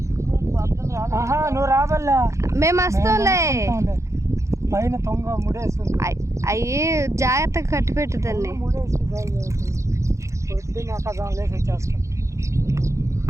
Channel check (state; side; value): late; left; 0.14 ms